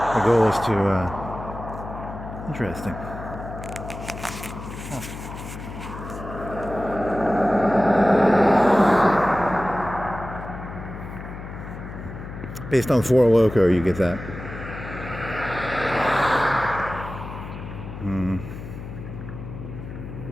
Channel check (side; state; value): left; noise; hum, 10 dB below the sound